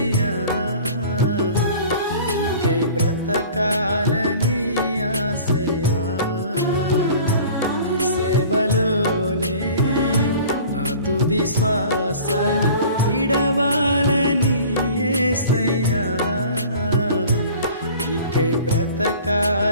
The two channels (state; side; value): inverted; both; correlation -0.45